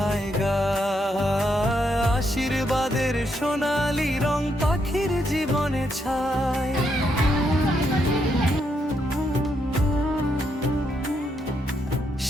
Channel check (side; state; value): both; normal; correlation 0.78